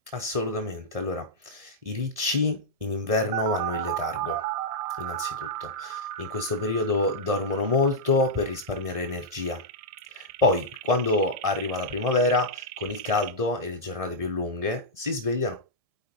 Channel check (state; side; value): late; left; 1.7 ms